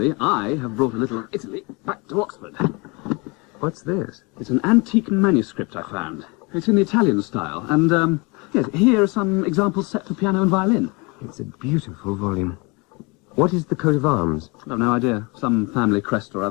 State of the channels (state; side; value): quieter; right; 28.4 dB